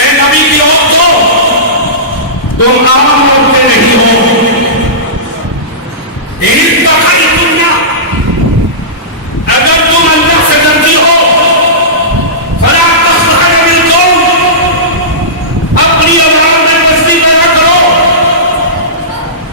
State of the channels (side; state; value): both; normal; correlation -0.20